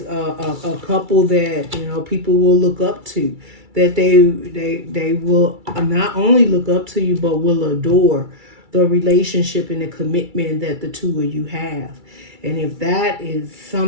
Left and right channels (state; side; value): late; left; 2.3 ms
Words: a couple that, you know, people will look up to, that they will not only look up to you, but will adore the relationship and the commitment that the two of you have. And if that is